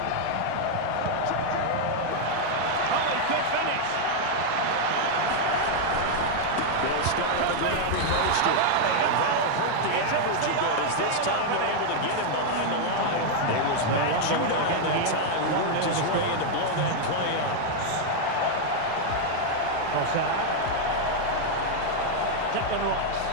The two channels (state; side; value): different; both; correlation 0.00